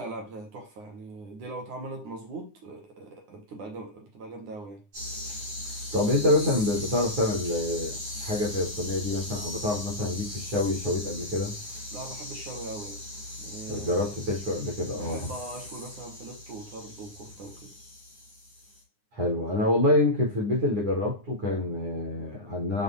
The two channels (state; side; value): late; left; 9.7 ms